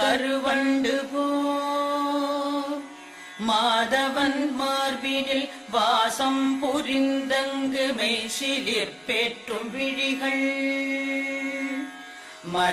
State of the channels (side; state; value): both; identical; correlation 1.00